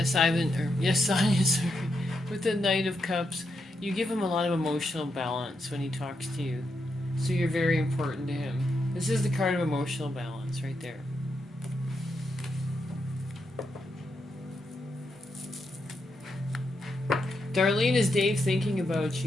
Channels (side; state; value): both; normal; correlation 0.83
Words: Ivan, or yes, Sonia, sorry. With the Knight of Cups, you give him a lot of emotional balance when he talks to you. So you're very important to him. This is the card of emotional balance right there. Darlene, is Dave thinking about